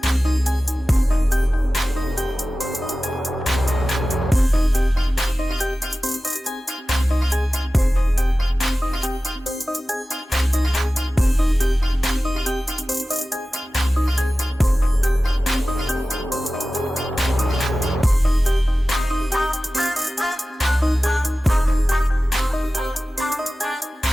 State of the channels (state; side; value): normal; both; correlation 0.96